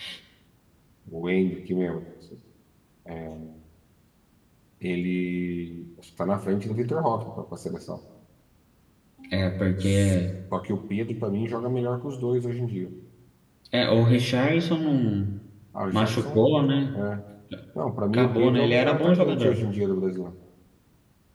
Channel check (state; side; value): identical; both; correlation 1.00